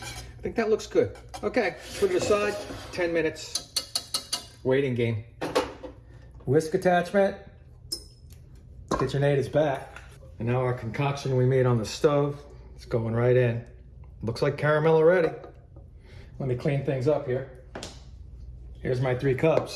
think that looks good. Okay, put it aside. 10 minutes. Waiting game. Whisk attachment. KitchenAid is back. And now our concoction we made on the stove, it's going right in. Looks like caramel already. Let me clean things up here. Here's my 3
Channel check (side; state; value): both; identical; correlation 1.00